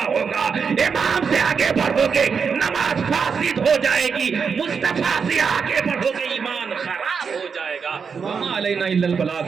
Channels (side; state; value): left; quieter; 5.9 dB